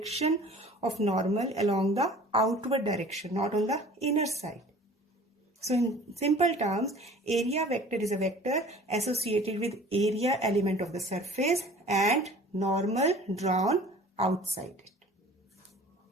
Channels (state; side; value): normal; both; correlation 0.46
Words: of normal along the outward direction, not on the inner side. So in simple terms, area vector is a vector associated with area element of the surface and normal drawn outside it.